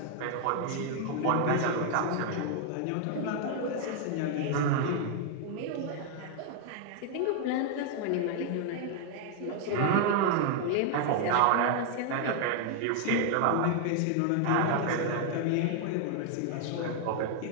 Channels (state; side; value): different; both; correlation 0.00